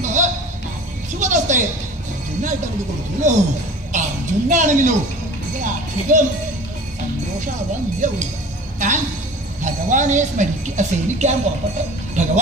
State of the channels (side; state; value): both; normal; correlation 0.41